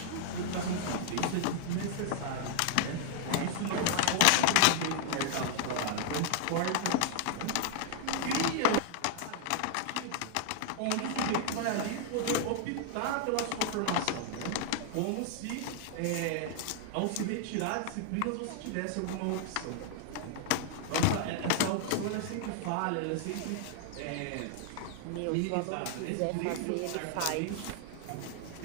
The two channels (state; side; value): different; both; correlation 0.00